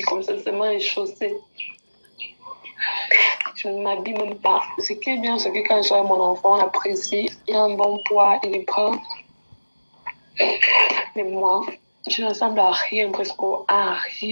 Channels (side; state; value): both; inverted; correlation -1.00